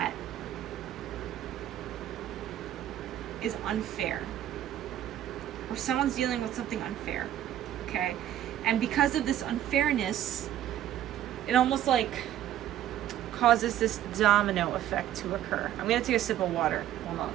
is unfair. Or someone's dealing with something unfair. Okay? And because of this unfairness, it almost like causes this domino effect to occur. I'm going to take a sip of water. Hold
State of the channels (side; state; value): left; quieter; 12.0 dB